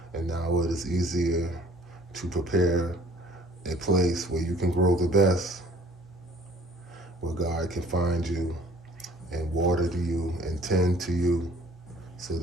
And now it is easier to prepare a place where you can grow the best, where God can find you and water to you and tend to you so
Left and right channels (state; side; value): normal; both; correlation 0.54